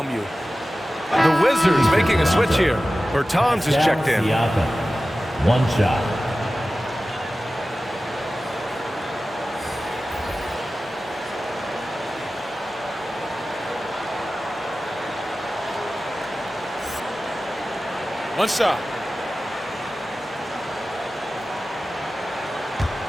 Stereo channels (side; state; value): both; normal; correlation 0.95